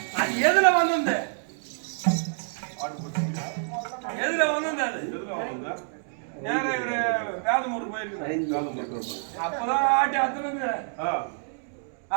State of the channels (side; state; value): left; silent; digital silence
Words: அது எதுல வந்து எதுல வந்து நேரம் இவரு வேதமூர் போயிருக்கு. அப்பதான் ஆட்டி அத்துனுங்க